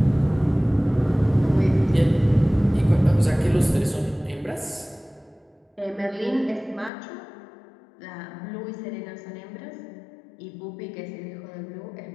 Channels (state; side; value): drops out; right; at 6.9 s